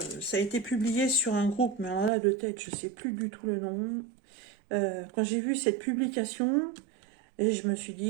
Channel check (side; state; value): left; drops out; at 2.1 s